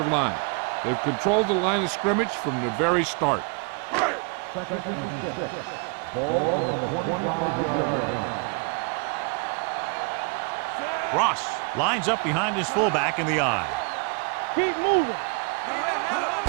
line. They've controlled the line of scrimmage from the very start. 2nd and 6. Ball on the 25-yard line. Ross lines up behind his fullback in the eye. Let's go now. Keep moving.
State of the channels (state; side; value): quieter; left; 33.9 dB